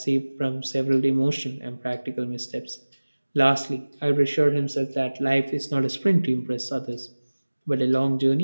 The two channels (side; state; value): both; inverted; correlation -1.00